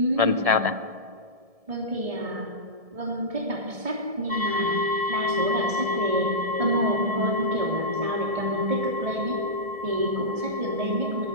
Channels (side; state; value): left; late; 1.7 ms